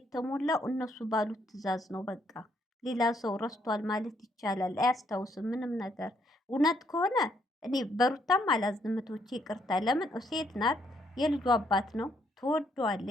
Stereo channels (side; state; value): both; normal; correlation 0.72